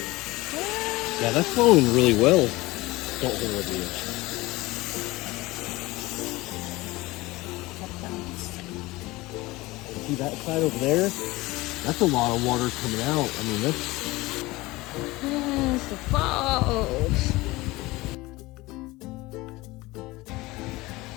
Yeah, that's flowing really well. Don't hold it here. See that side over there? That's a lot of water coming out. I mean, that's... Yes, the falls.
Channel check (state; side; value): quieter; right; 20.6 dB